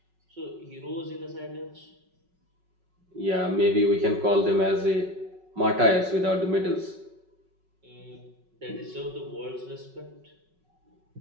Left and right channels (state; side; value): late; left; 5.4 ms